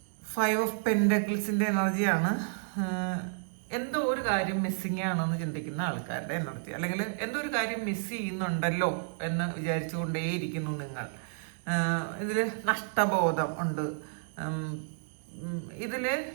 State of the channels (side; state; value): left; silent; digital silence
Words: ഫൈവ് ഓഫ് പെൻഡക്കിൾസിന്റെ എനർജിയാണ്. എന്തോ ഒരു കാര്യം മിസ്സിങ് ആണെന്ന് ചിന്തിക്കുന്ന ആൾക്കാരുടെ എനർജി, അല്ലെങ്കിൽ എന്തോ ഒരു കാര്യം മിസ് ചെയ്യുന്നുണ്ടല്ലോ എന്ന് വിചാരിച്ചുകൊണ്ടേയിരിക്കുന്നു നിങ്ങൾ. ഇതിൽ നഷ്ടബോധം ഉണ്ട്. ഇതിൽ